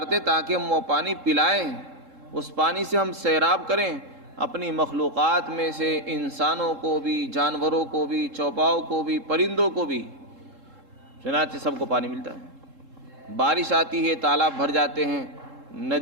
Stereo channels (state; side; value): late; left; 3.7 ms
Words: تاکہ ہم وہ پانی پلائیں، اس پانی سے ہم سیراب کریں اپنی مخلوقات میں سے انسانوں کو بھی، جانوروں کو بھی، چوپاؤں کو بھی، پرندوں کو بھی، چنانچہ سب کو پانی ملتا ہے۔ بارش آتی ہے، تالاب بھر جاتے ہیں،